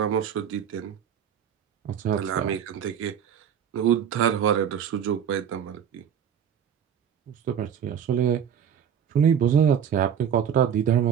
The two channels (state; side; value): quieter; left; 8.5 dB